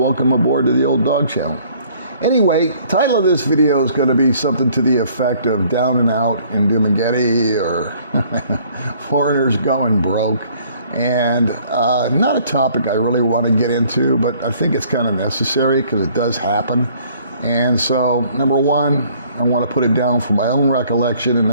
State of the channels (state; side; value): inverted; both; correlation -0.59